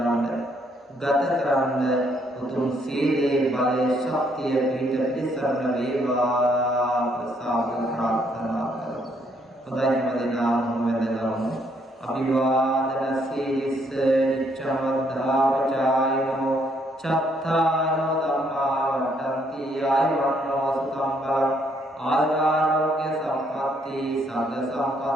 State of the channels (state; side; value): normal; both; correlation 0.70